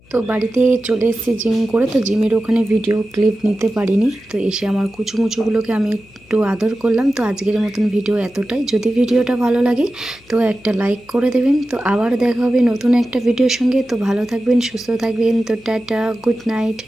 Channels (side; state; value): left; noise; hum, 29 dB below the sound